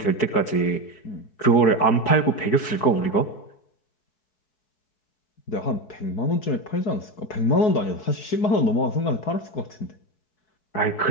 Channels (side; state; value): right; late; 4.6 ms